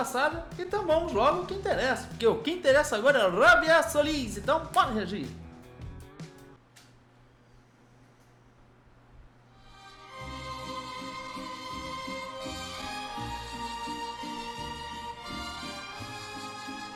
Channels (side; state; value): both; identical; correlation 1.00